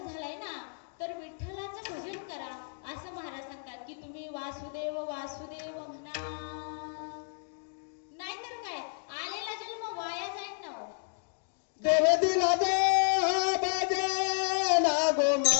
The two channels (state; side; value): silent; right; digital silence